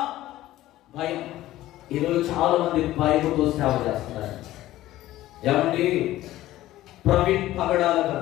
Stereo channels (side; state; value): right; quieter; 15.2 dB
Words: భయం. ఈరోజు చాలా మంది భయంతో సేవ చేస్తున్నారు. ఏమండి? ప్రవీణ్ పగడాల